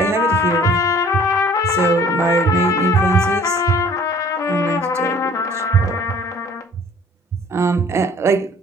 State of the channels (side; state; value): both; normal; correlation 0.53